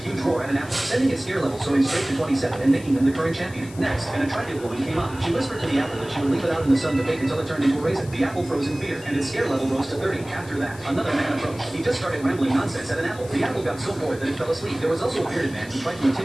huge roar at an apple, sending its scare level soaring straight to 27 and making him the current champion. Next, an attractive woman came up. She whispered to the apple that she would leave it out in the sun to bake until it turned into a raisin. The apple froze in fear, and its scare level rose to 30. After that, another man approached. He just started rambling nonsense at an apple. The apple got so bored that it fell asleep. There was also a bearded man who tried to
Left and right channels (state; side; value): noise; left; hiss, 20 dB below the sound